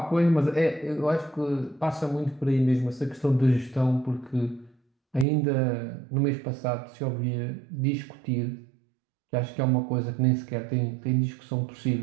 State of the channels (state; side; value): drops out; left; at 5.2 s